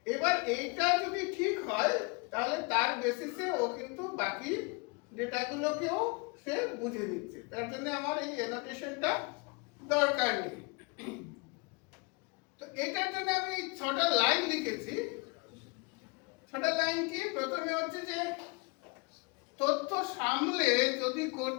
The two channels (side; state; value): right; quieter; 30.3 dB